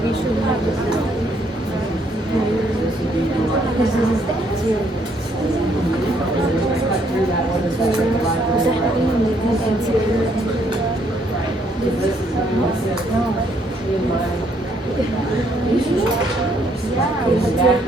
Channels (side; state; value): both; normal; correlation 0.69